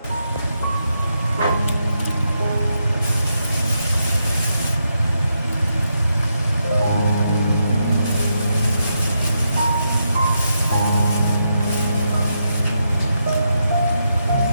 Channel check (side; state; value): both; inverted; correlation -0.82